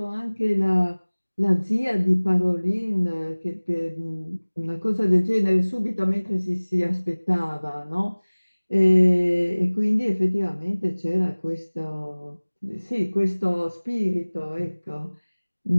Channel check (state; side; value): inverted; both; correlation -1.00